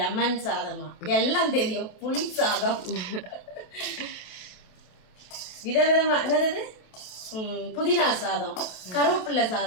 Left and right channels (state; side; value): late; right; 28 ms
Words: சாதமா, எல்லாம் தெரியும். புளி சாதம், விதவிதமா, என்னது புதினா சாதம், கருவேப்பிள்ளை